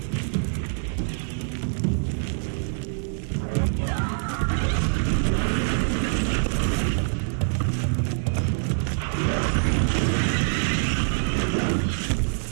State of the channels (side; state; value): left; silent; digital silence